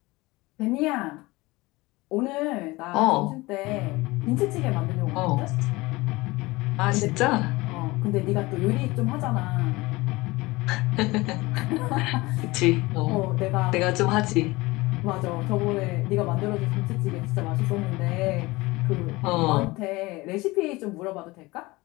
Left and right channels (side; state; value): right; quieter; 21.6 dB